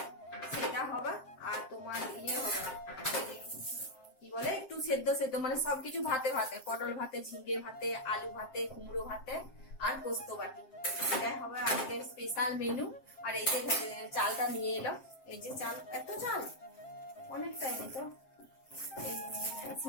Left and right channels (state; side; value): late; right; 7.6 ms